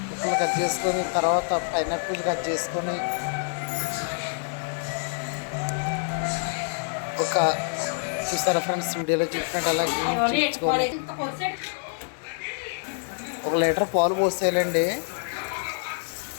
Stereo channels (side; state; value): right; silent; digital silence